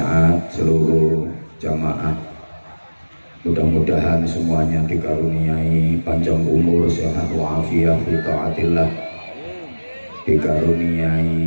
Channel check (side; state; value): both; inverted; correlation -1.00